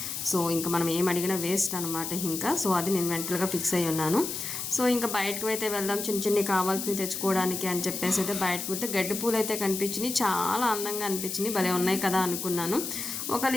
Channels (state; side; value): noise; left; hiss, 5 dB below the sound